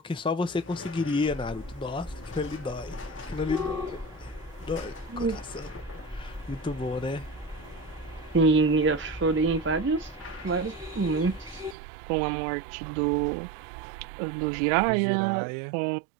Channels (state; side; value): drops out; left; at 11.8 s